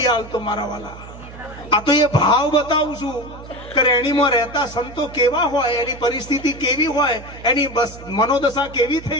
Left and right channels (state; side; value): noise; right; hum, 16 dB below the sound